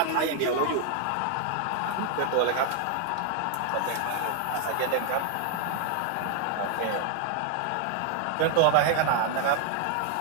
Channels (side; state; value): both; different; correlation 0.00